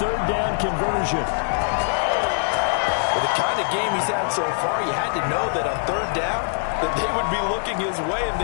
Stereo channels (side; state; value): right; silent; 64 dB below the other